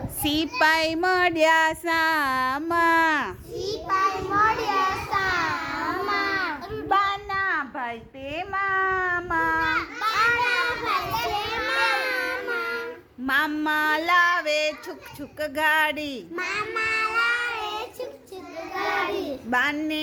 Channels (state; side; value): identical; both; correlation 1.00